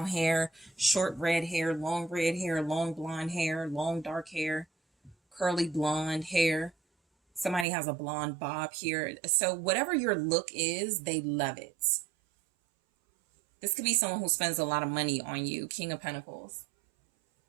hair, short red hair, long blonde hair, long dark hair, curly blonde hair. Somebody has a blonde bob here. So whatever your look is, they love it. This could be someone who spends a lot of money on you. King of Pentacles.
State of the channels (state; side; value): drops out; left; at 7.7 s